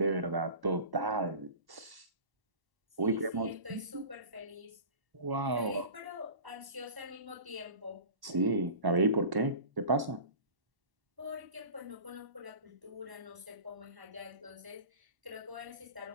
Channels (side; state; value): left; late; 1.1 ms